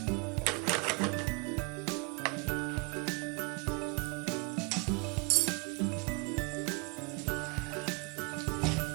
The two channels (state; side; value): quieter; left; 30.2 dB